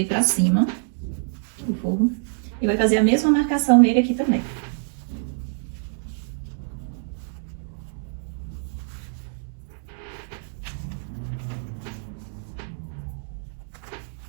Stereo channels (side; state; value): left; silent; digital silence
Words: pra cima, o forro. E vai fazer a mesma marcação nele aqui também.